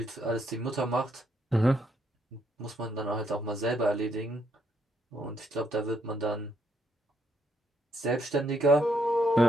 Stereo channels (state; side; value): normal; both; correlation 0.73